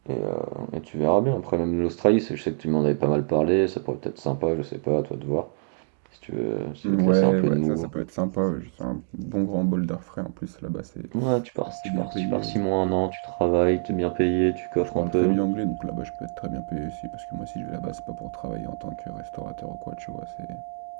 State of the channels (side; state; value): left; silent; digital silence